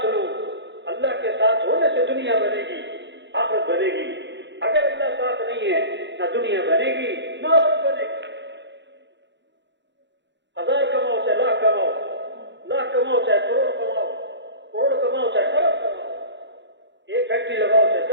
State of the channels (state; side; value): late; left; 0.52 ms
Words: لو۔ اللہ کے ساتھ ہونے سے دنیا بنے گی، آخرت بنے گی۔ اگر اللہ ساتھ نہیں ہے، نہ دنیا بنے گی نہ آخرت بنے گی۔ 1000 کماؤ چاہے لاکھ کماؤ، لاکھ کماؤ چاہے کروڑ کماؤ، کروڑ کماؤ چاہے ارب کماؤ، ایک فیکٹری لگاؤ چاہے